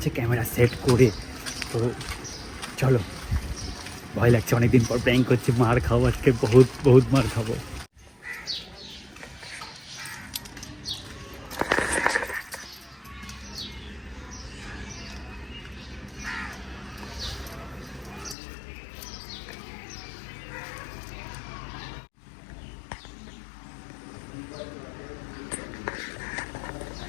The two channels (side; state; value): right; drops out; at 18.4 s